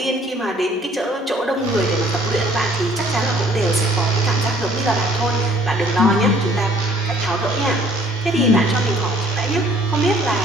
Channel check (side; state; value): both; normal; correlation 0.58